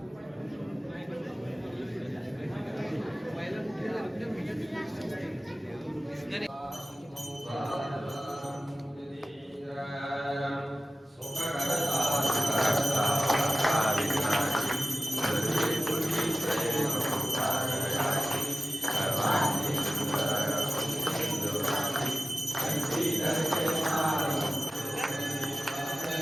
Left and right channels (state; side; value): normal; both; correlation 0.96